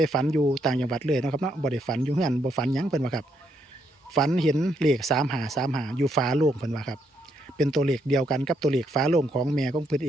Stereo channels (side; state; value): both; normal; correlation 0.76